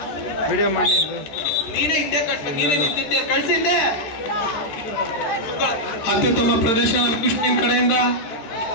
video ಮಾಡಿ ನೀನೇ ಹಿಂದೆ ಕಟ್ಬೇಕು, ನೀನೇ ನಿಂತಿದ್ದೆ ಕಳ್ಸಿದ್ದೆ. ಅತ್ಯುತ್ತಮ ಪ್ರದರ್ಶನ ಕೃಷ್ಣನ್ ಕಡೆಯಿಂದ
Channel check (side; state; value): right; late; 14 ms